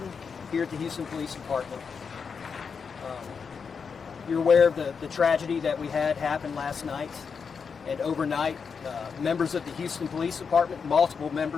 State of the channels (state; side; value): quieter; right; 5.9 dB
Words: here at the Houston Police Department. You're aware of the tragedy that we had happen last night, and overnight, members of the Houston Police Department, multiple